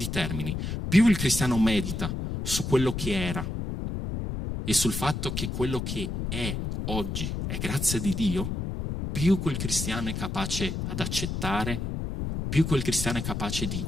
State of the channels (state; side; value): noise; left; rumble, 3 dB below the sound